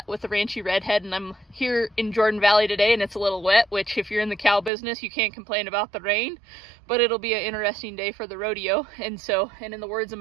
with the Ranchy Redhead, and I'm here in Jordan Valley today, and it's a little wet, which if you're in the cow business, you can't complain about the rain, but it'll be an interesting day for the rodeo. And in the words of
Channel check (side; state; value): left; drops out; at 4.7 s